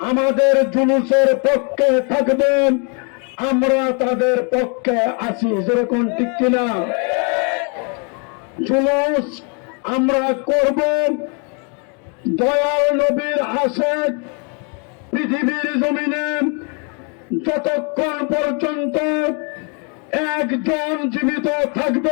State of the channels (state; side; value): quieter; right; 37.0 dB